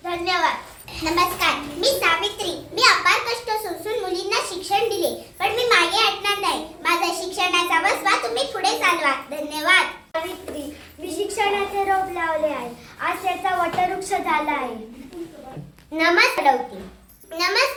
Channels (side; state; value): both; identical; correlation 1.00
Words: धन्यवाद. नमस्कार, मी सावित्री. मी अपार कष्ट सोसून मुलींना शिक्षण दिले, पण मी मागे हटणार नाही. माझा शिक्षणाचा वसवा तुम्ही पुढे चालवा. धन्यवाद. सावित्री, मी शिक्षणाचे रोप लावले आहे. आज त्याचा वटवृक्ष झाला आहे.